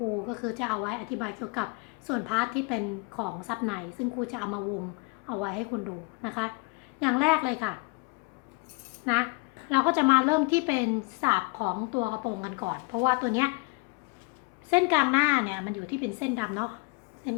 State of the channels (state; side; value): quieter; right; 29.0 dB